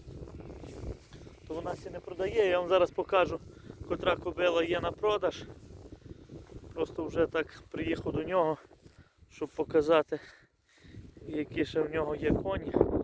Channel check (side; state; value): both; identical; correlation 1.00